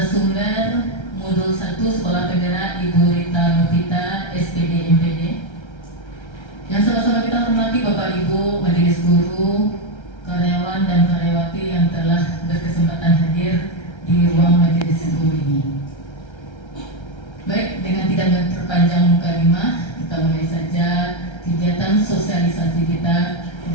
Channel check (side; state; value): right; late; 1.3 ms